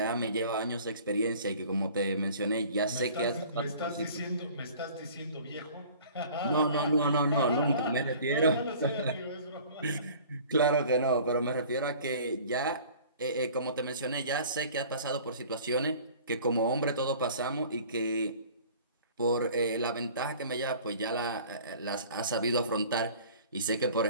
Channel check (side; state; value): both; inverted; correlation -0.47